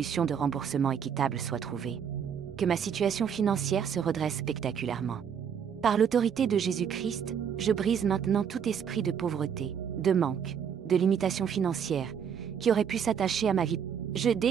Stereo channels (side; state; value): left; quieter; 7.8 dB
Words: de remboursement équitables soient trouvées. Que ma situation financière se redresse spectaculairement. Par l'autorité de Jésus-Christ, je brise maintenant tout esprit de pauvreté, de manque, de limitation financière, qui aurait pu s'attacher à ma vie. Je